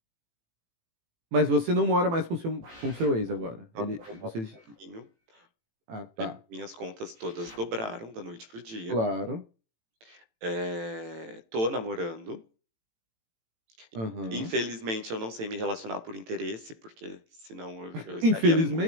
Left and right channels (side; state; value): left; late; 18 ms